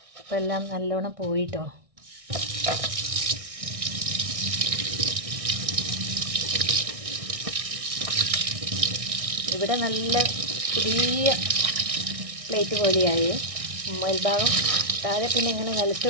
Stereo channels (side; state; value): left; late; 1.6 ms